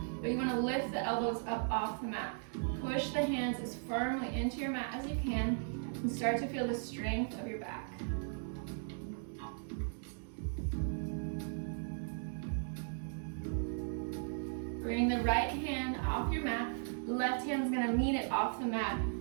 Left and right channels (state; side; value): silent; left; digital silence